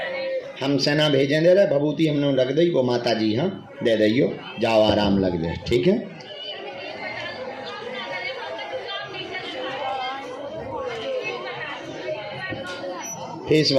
हम सेना भेजें दे रहे, भभूति हमने रख दी, वो माता जी हाँ दे दियो, जाओ आराम लग जाए, ठीक है। फेस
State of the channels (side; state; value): both; identical; correlation 1.00